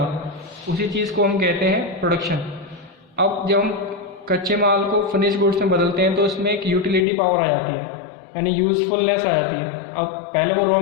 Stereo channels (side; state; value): right; drops out; at 7.1 s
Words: उसी चीज़ को हम कहते हैं प्रोडक्शन। अब जब हम कच्चे माल को फिनिश गुड्स में बदलते हैं तो उसमें एक यूटिलिटी पावर आ जाती है, यानी यूजफुलनेस आ जाती है। अब पहले वो रॉ